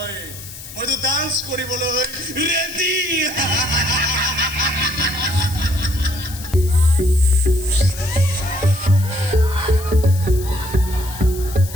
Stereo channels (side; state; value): left; noise; hiss, 14 dB below the sound